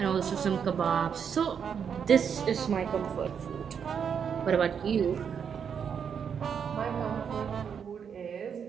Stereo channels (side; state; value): left; quieter; 7.3 dB